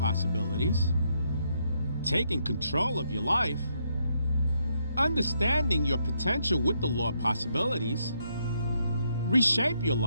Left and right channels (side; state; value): both; inverted; correlation -0.76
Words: Taking control of your life, understanding your potential with the law of possibilities, reshape your